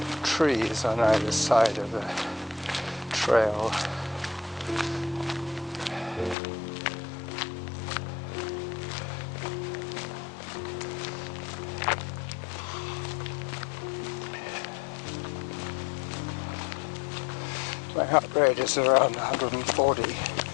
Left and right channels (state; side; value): drops out; right; at 6.4 s